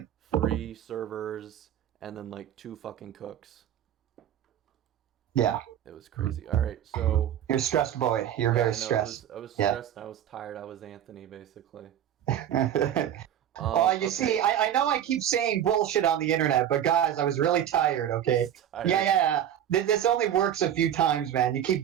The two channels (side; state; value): left; quieter; 10.4 dB